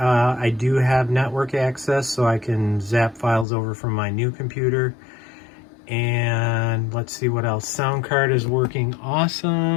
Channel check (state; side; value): drops out; right; at 3.5 s